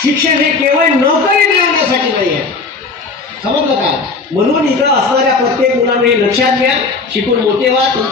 शिक्षण हे केवळ नोकरी मिळवण्यासाठी नाही आहे. समजलं का? म्हणून इथं असणाऱ्या प्रत्येक मुलांना हे लक्षात घ्या. शिकून मोठे व्हा.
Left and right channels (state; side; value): quieter; right; 4.1 dB